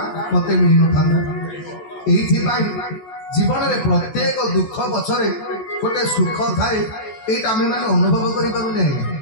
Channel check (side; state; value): right; late; 14 ms